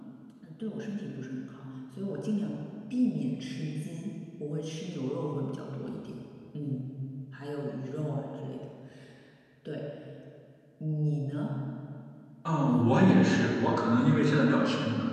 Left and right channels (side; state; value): both; identical; correlation 1.00